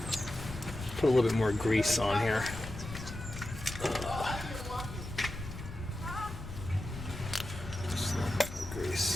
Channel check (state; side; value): noise; left; rumble, 10 dB below the sound